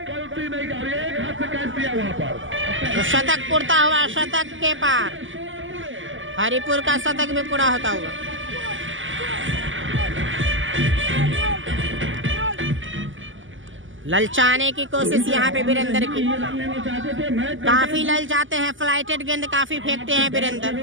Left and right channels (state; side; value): late; left; 0.57 ms